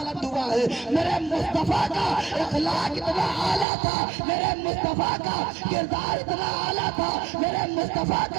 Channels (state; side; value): drops out; left; at 3.7 s